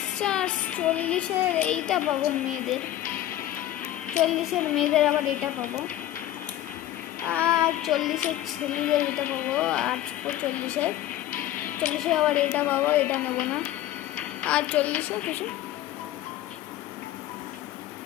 40-এর এইটা পাবো মেয়েদের, 40-এর মেয়েদের আবার এটা পাবো, আর 40-এর ছেলেদের এটা পাবো, আর 40-এর আবার এটা পাবো, এটা নেবো না। আর 40-এ কিছু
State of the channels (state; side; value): quieter; right; 13.4 dB